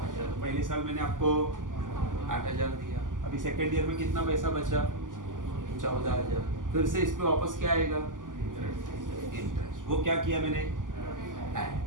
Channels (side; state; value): left; late; 0.88 ms